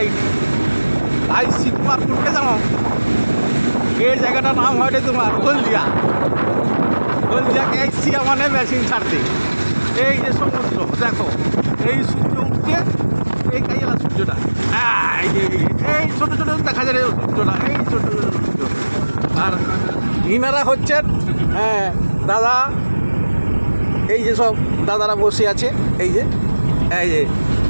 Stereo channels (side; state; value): both; inverted; correlation -1.00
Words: আই শীতমারপুরকে জানো, এই জায়গাটার নাম হয় তোমার হলদিয়া। হলদিয়াকে আইসি মানে মেশিন ছাড়তে। এই যে সমুদ্র দেখো, এই সূর্য উঠছে, এই কাইলা সূর্যটা, এই ছোটো ছোটো দেখা যায় সূর্যটা, এই ছোটো ছোটো সূর্য। আর ইনারা হচ্ছেন দাদা, এই যে সব দাদারা বসে আছে, এই যে